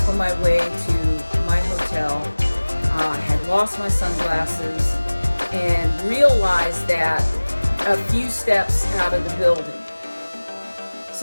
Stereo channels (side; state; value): both; inverted; correlation -1.00